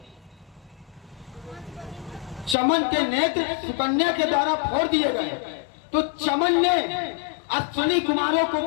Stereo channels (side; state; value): right; drops out; at 2.6 s